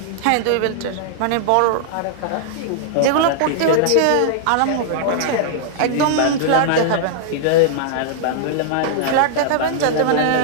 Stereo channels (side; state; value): both; different; correlation -0.01